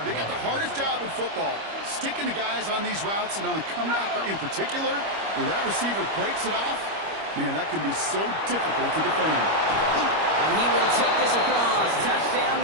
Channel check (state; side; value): late; left; 25 ms